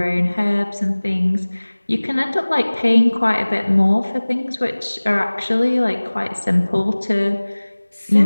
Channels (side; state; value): both; inverted; correlation -1.00